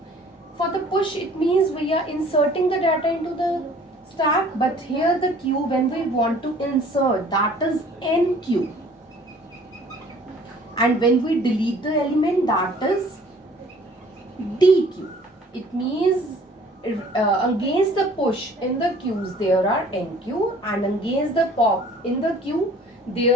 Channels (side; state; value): both; normal; correlation 0.53